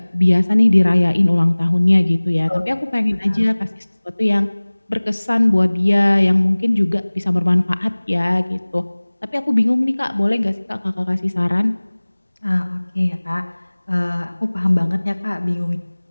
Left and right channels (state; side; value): inverted; both; correlation -1.00